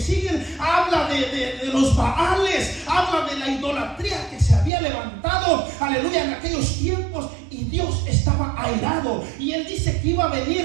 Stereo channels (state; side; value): drops out; left; at 4.7 s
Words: habla de los Baales, habla de la idolatría que se había levantado, aleluya, en aquellos tiempos, y Dios estaba airado. Y Él dice que iba a